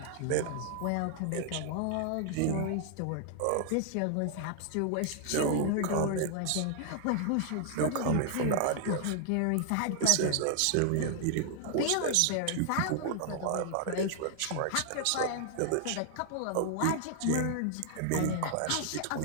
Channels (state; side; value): different; both; correlation 0.00